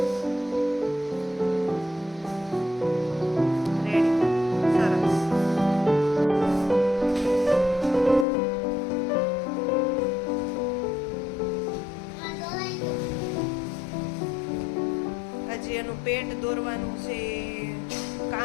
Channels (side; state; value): right; drops out; at 8.2 s